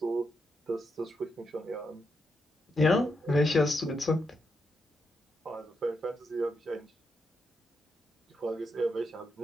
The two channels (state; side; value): normal; both; correlation 0.83